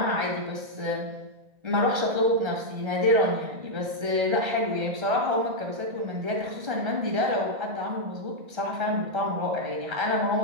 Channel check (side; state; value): left; late; 1.3 ms